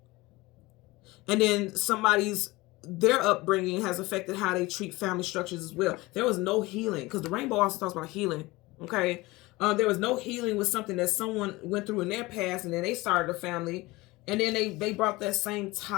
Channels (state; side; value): quieter; right; 21.2 dB